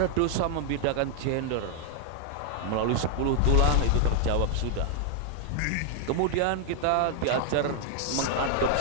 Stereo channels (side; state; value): both; different; correlation 0.00